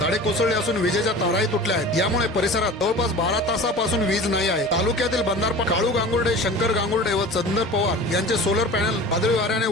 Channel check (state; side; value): normal; both; correlation 0.38